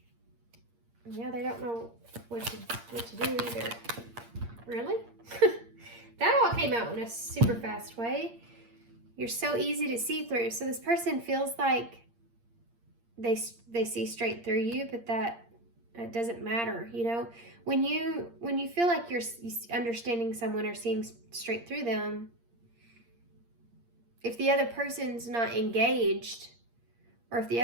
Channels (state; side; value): late; left; 8.6 ms